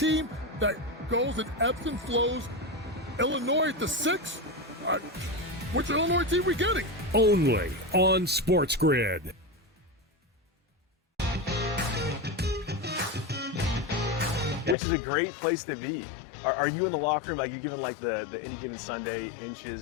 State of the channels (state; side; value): drops out; right; at 14.8 s